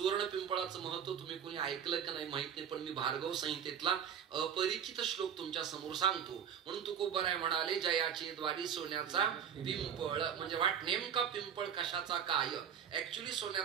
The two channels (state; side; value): quieter; left; 8.3 dB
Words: पिंपळाचं महत्व तुम्ही कोणी ऐकलं का नाही माहित नाही, पण मी भार्गव संहितेतला अपरिचित श्लोक तुमच्या समोर सांगतो. म्हणून तुकोबाराय म्हणाले जयाचे द्वारी सोन्याचा पिंपळ. म्हणजे वाट नेमका पिंपळ कशाचा काय. ऍक्च्युली